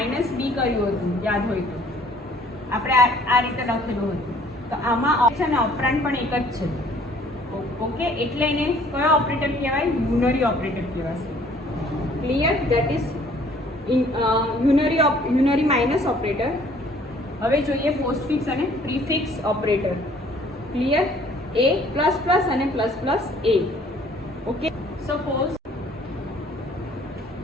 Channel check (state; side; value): normal; both; correlation 0.57